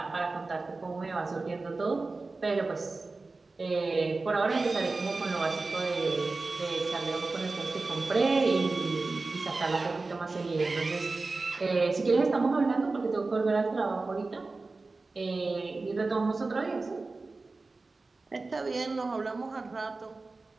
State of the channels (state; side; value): quieter; left; 3.6 dB